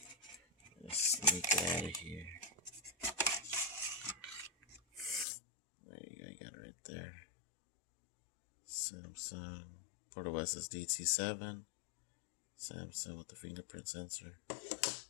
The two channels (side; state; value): right; drops out; at 5.2 s